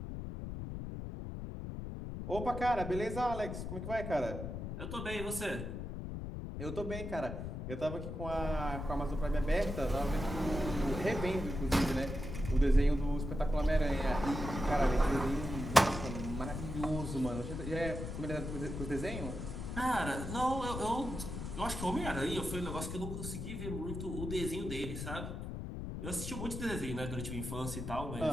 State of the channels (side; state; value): left; noise; rumble, 6 dB below the sound